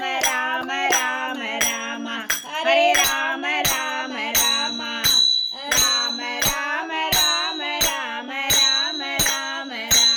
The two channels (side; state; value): both; identical; correlation 1.00